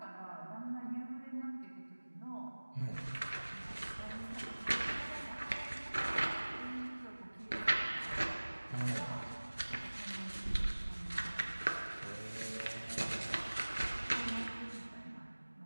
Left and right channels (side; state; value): both; inverted; correlation -1.00